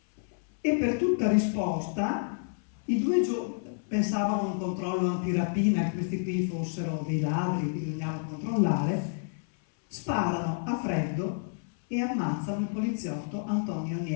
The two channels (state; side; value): silent; right; 58 dB below the other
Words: e per tutta risposta i 2 pensavano a un controllo antirapina, che questi qui fossero dei ladri che bisognava controllare, sparano a freddo e ammazzano il poliziotto Antonio